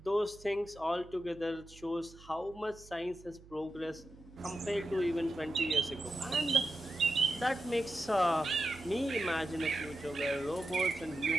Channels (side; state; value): right; noise; hum, 21 dB below the sound